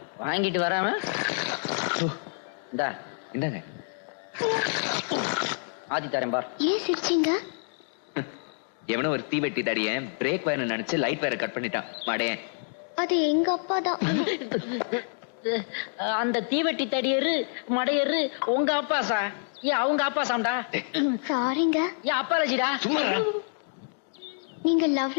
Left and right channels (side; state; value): right; silent; digital silence